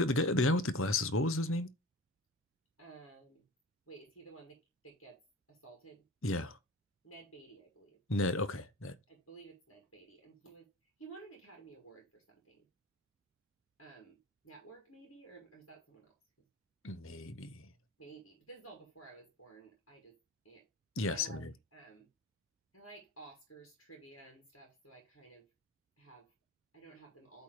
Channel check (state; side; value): normal; both; correlation 0.37